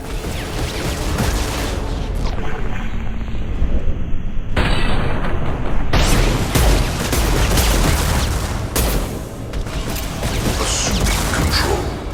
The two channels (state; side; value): identical; both; correlation 1.00